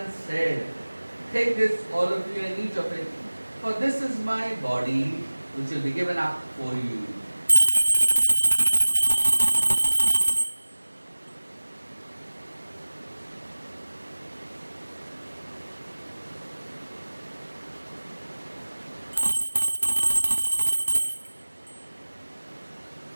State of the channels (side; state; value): both; inverted; correlation -1.00